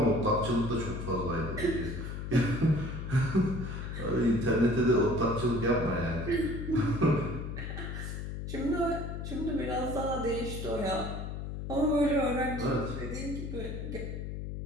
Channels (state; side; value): noise; left; hum, 6 dB below the sound